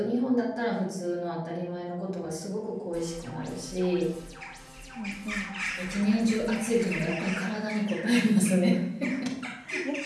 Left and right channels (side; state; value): both; identical; correlation 1.00